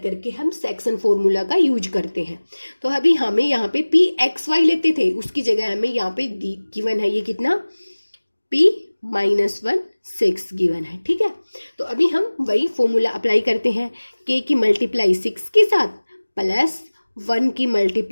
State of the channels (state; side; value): inverted; both; correlation -1.00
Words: हम सेक्शन फॉर्मूला का यूज करते हैं। तो अभी हमें यहाँ पे पी एक्स वाई लेते थे, उसकी जगह हमें यहाँ पे गिवन है ये कितना, p -1 6 गिवन है। ठीक है, तो अभी हम वही फॉर्मूला अप्लाई करते हैं, k की मल्टीप्लाई 6 के साथ प्लस 1 की